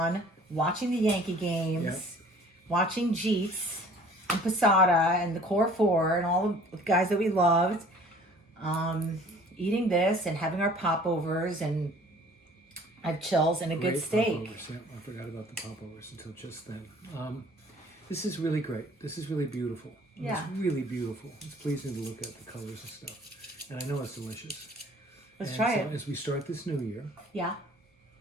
watching the Yankee games, watching Jeets and Posada and the Core Four and all the guys that we loved, eating this and having our popovers, and I have chills and a good steak. Popovers. Yeah, I forgot about the popovers until just then. This is really great. This is really beautiful. Yeah. It's really beautiful. It's pleasing to look at the colors and stuff. And I know it's delicious. Let's try it. As we start this new year, Yeah.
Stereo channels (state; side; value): normal; both; correlation 0.52